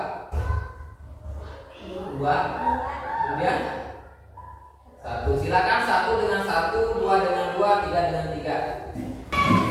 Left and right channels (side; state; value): both; identical; correlation 1.00